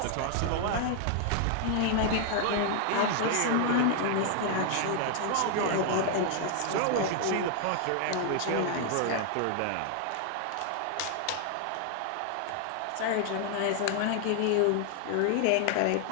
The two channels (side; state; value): both; different; correlation 0.00